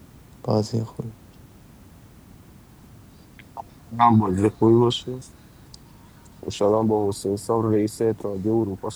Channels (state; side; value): identical; both; correlation 1.00